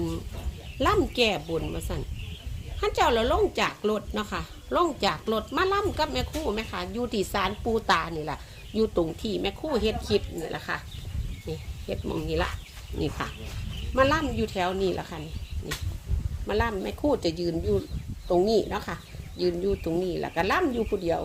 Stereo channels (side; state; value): both; identical; correlation 1.00